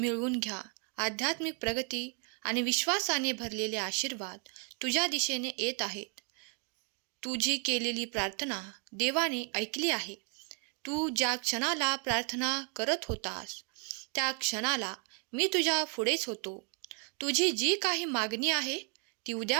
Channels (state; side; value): quieter; left; 39.0 dB